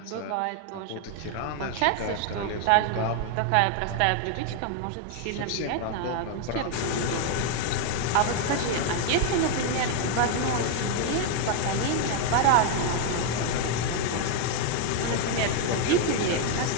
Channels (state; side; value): different; both; correlation 0.01